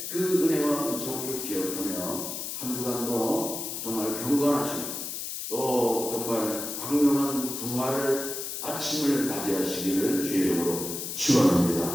그 은혜와 은총을 기억하며 한 주간도 정말 경건하시고 또 정말 광명한 부활 아침을 맞이하시기를 주의 이름으로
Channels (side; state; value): left; noise; hiss, 5 dB below the sound